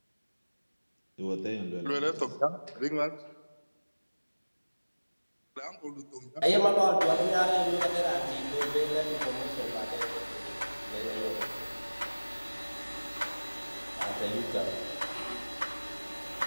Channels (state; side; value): inverted; both; correlation -1.00